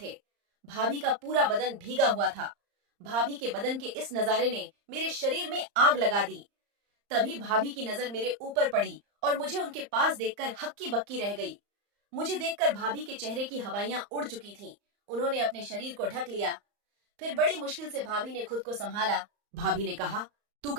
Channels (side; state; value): left; late; 35 ms